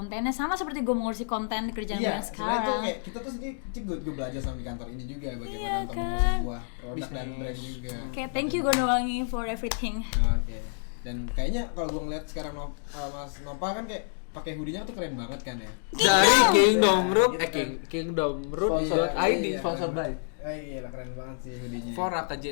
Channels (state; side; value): silent; right; digital silence